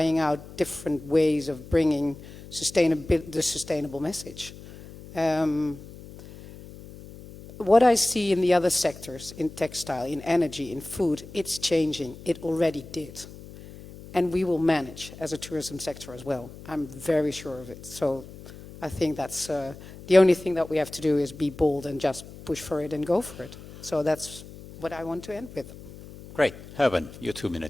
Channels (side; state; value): left; noise; hum, 16 dB below the sound